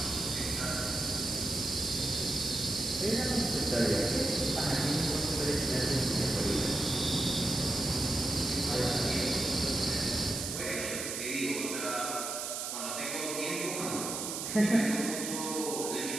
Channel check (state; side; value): noise; right; hiss, 4 dB below the sound